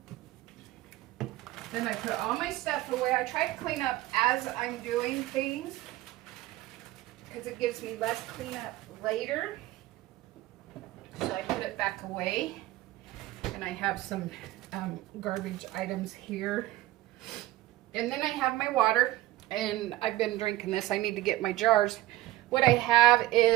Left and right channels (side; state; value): left; quieter; 16.2 dB